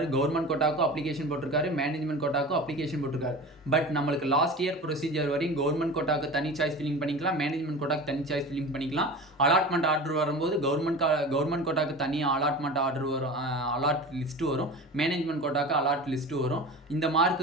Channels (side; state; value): both; normal; correlation 0.34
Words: கவர்மெண்ட் கோட்டாக்கும் அப்ளிகேஷன் போட்டிருக்காரு, மேனேஜ்மெண்ட் கோட்டாக்கும் அப்ளிகேஷன் போட்டிருக்காரு. பட் நம்மளுக்கு லாஸ்ட் இயர் ப்ரொசீஜர் வரையும் கவர்மெண்ட் கோட்டாக்கு தனி சாய்ஸ் ஃபில்லிங் பண்ணிக்கலாம், மேனேஜ்மெண்ட் கோட்டாக்கு தனி சாய்ஸ் ஃபில்லிங் பண்ணிக்கலாம். அலாட்மெண்ட் ஆர்டர் வரும்போது கவர்மெண்ட் கோட்டாக்கு தனியாக அலாட்மெண்ட் ஆர்டர் வரும், அலாட் லிஸ்ட்டு வரும், மேனேஜ்மெண்ட் கோட்டாக்கு அலாட் லிஸ்ட்டு வரும். இந்த